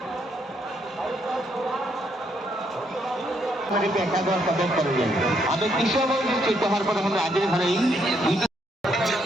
আমি কৃষক হওয়ার পরে আমরা আগের ঘরেই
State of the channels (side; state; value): both; normal; correlation 0.74